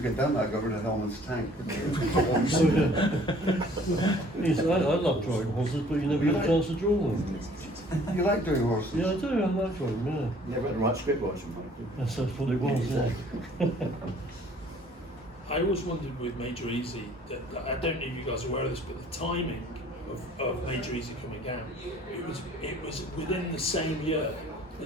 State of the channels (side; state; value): both; normal; correlation 0.55